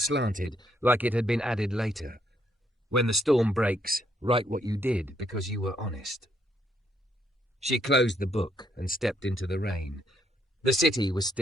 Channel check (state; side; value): normal; both; correlation 0.73